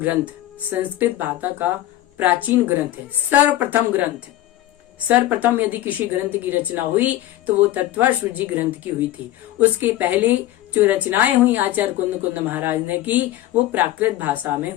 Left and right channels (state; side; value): quieter; right; 14.4 dB